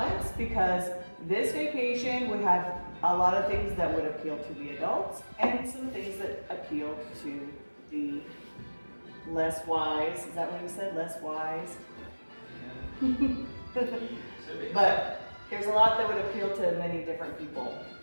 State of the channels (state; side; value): inverted; both; correlation -1.00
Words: because this vacation would have a lot of things that would appeal to the adults and some things that appeal to the less wise. Is that what you said? Less wise? Yeah. But there's a lot that would appeal to many different people.